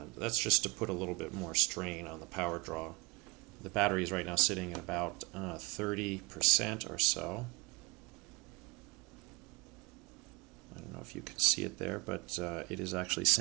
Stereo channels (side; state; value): left; quieter; 26.6 dB